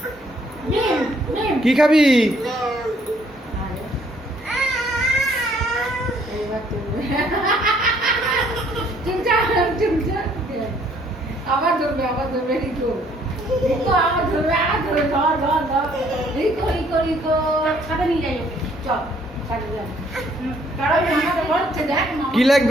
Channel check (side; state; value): both; normal; correlation 0.64